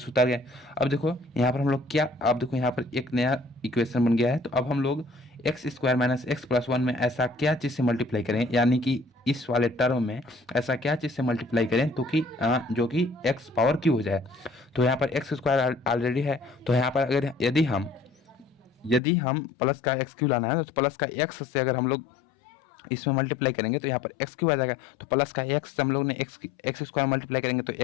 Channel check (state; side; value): drops out; right; at 19.0 s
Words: उतार गए। अब देखो यहाँ पर हम लोग क्या, अब देखो यहाँ पर एक नया इक्वेशन बन गया है। तो अब हम लोग x square minus x plus 1 में ऐसा क्या चीज़ से मल्टीप्लाई करें, यानी कि इस वाले टर्म में ऐसा क्या चीज़ से मल्टीप्लाई करें तो कि जो कि एक्स पावर क्यू हो जाए। तो यहाँ पर एक्स स्क्वायर ऑलरेडी है, तो यहाँ पर अगर यदि हम प्लस का एक्स क्यू लाना है तो प्लस का एक्स से अगर हम लोग इसमें मल्टीप्लाई करेंगे तो यहाँ पर एक्स क्यू आ जाएगा। तो प्लस का एक्स से हम लोग ने एक्स स्क्वायर मल्टीप्लाई करेंगे तो